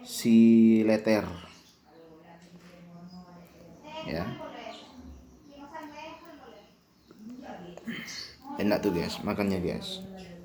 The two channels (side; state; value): both; identical; correlation 1.00